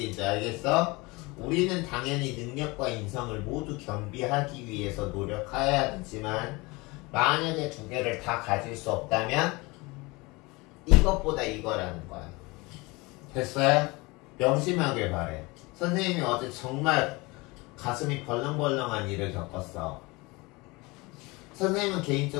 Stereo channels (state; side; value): quieter; right; 24.4 dB